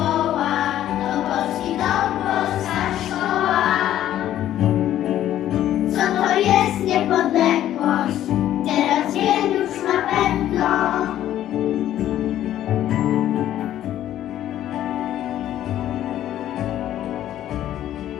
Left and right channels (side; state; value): right; quieter; 12.2 dB